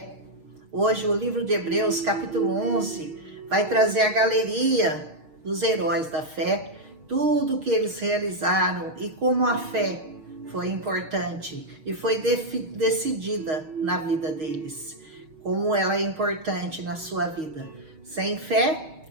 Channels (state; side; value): late; left; 6.4 ms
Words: Hoje o livro de Hebreus, capítulo 11, vai trazer a galeria dos heróis da fé, tudo que eles realizaram e como a fé foi importante e foi decidida na vida deles. Como ela é importante na sua vida. Sem fé,